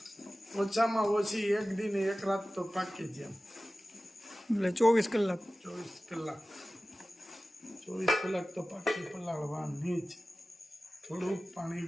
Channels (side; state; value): both; normal; correlation 0.96